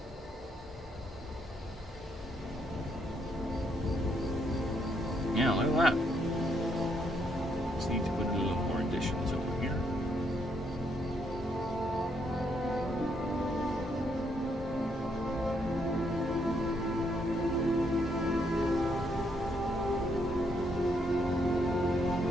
Yeah, look at that. Just need to put a little more additions over here.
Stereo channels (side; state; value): both; normal; correlation 0.74